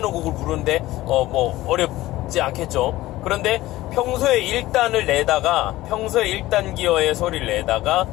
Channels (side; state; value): right; quieter; 16.8 dB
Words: 부르는데 뭐 어렵지 않겠죠. 그런데 평소에 1단을 내다가, 평소에 1단 기어의 소리를 내다가